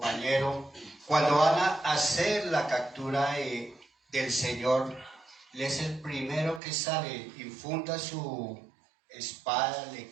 cuando van a hacer la captura del Señor, Él es el primero que sale, infunda su espada, le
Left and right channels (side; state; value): left; drops out; at 6.6 s